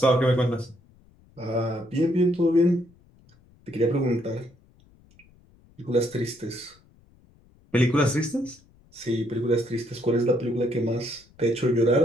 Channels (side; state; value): left; noise; rumble, 30 dB below the sound